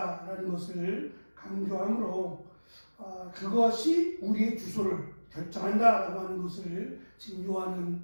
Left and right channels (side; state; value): both; inverted; correlation -1.00